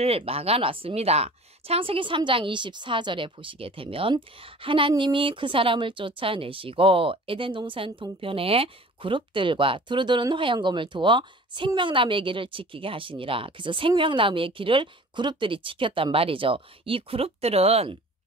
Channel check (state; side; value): normal; both; correlation 0.44